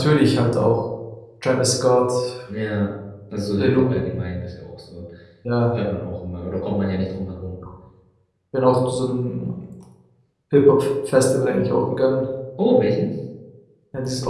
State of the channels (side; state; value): both; identical; correlation 1.00